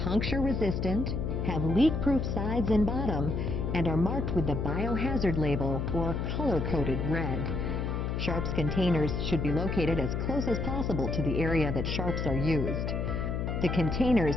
puncture-resistant, have leak-proof sides and bottom, and are marked with the biohazard label or color-coded red. Sharps containers should be located as close as possible to the area that sharps are used. The containers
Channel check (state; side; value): noise; left; hum, 1 dB below the sound